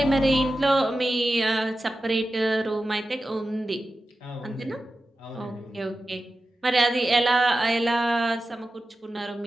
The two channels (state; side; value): normal; both; correlation 0.93